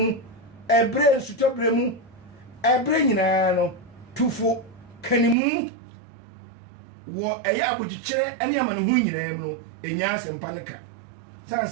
ɛbrɛ nsutɔ brɛ mu ɛbrɛ nyinaa no tufo kanimu wɔ ɛyɛ abogyekyerɛ ɛne amanehu nyinaa mu no ɛnya asɛmpa no ka san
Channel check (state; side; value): drops out; left; at 5.4 s